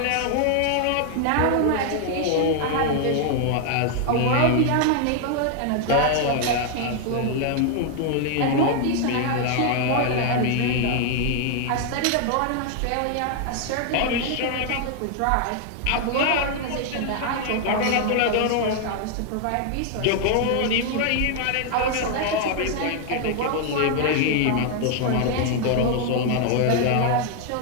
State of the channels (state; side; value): different; both; correlation 0.00